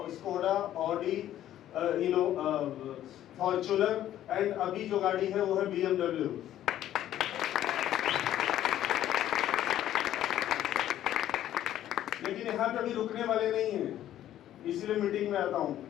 Skoda, Audi, Fortuner, and अभी जो गाड़ी है वो है BMW। लेकिन यहाँ पे अभी रुकने वाले नहीं हैं, इसीलिए मीटिंग में आता हूँ।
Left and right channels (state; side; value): quieter; right; 12.2 dB